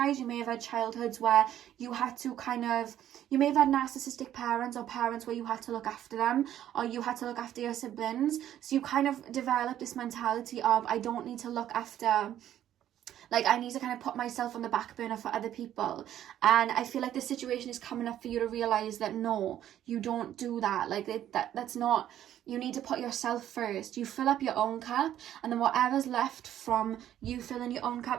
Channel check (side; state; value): left; quieter; 11.5 dB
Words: you may have had childhoods where you had to you may have had narcissistic parents, or parents where you had to look after them, or you had to look after your siblings. So you kind of develop this mentality of, I don't need to look after, like, I need to kind of put myself on the back burner for other people. And I feel like this situation is coming up for you to realize that no, you don't do that. Like, that's not, you need to put yourself first. You fill up your own cup, and then whatever's left from you filling your own